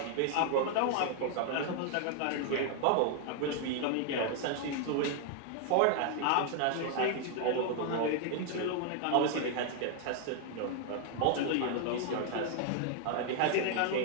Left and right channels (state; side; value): different; both; correlation 0.00